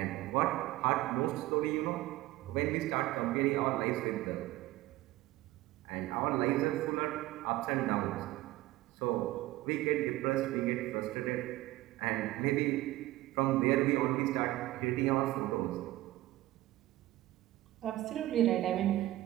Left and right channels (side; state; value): left; quieter; 16.8 dB